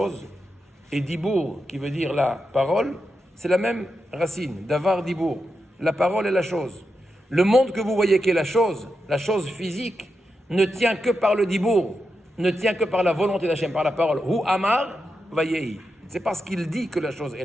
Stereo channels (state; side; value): normal; both; correlation 0.87